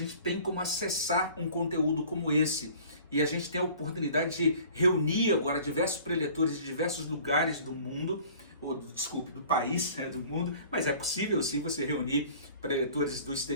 tem como acessar um conteúdo como esse. E a gente tem a oportunidade de reunir agora diversos preletores de diversos lugares do mundo, do país, do mundo, mas é possível sim você reunir preletores do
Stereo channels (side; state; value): both; inverted; correlation -0.49